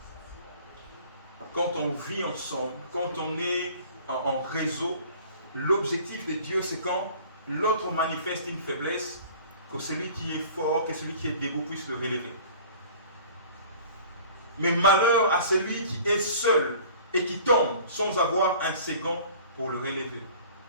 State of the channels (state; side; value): inverted; both; correlation -0.47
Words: Quand on vit ensemble, quand on est en réseau, l'objectif de Dieu, c'est quand l'autre manifeste une faiblesse, que celui qui est fort, que celui qui est debout puisse le relever. Mais malheur à celui qui est seul et qui tombe sans avoir un second pour le relever.